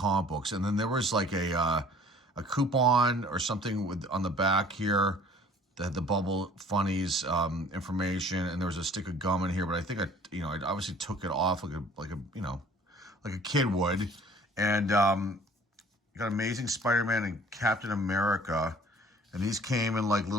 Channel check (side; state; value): both; normal; correlation 0.52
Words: books. And then there was like a coupon or something on the back here that had the Bubble Funnies information, and there was a stick of gum in here. But I think I obviously took it off like a kid would. And got Amazing Spider-Man and Captain America. And these came in like